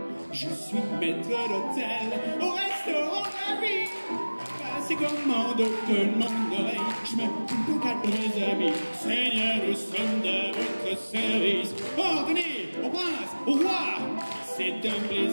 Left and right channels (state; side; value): inverted; both; correlation -1.00